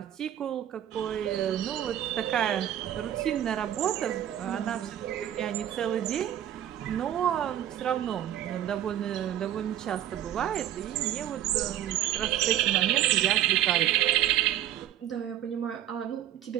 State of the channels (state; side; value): quieter; left; 11.6 dB